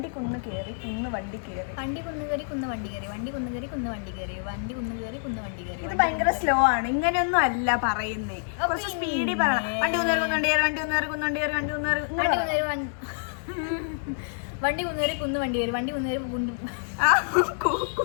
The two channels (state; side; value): silent; right; digital silence